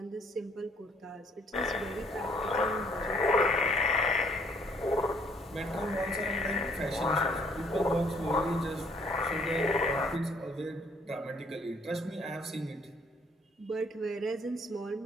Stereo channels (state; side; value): normal; both; correlation 0.64